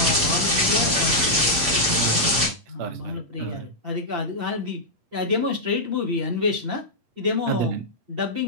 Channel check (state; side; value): late; left; 8.6 ms